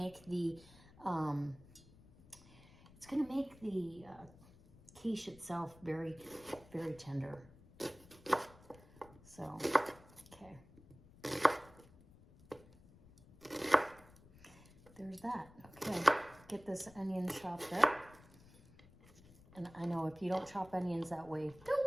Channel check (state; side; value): noise; left; rumble, 23 dB below the sound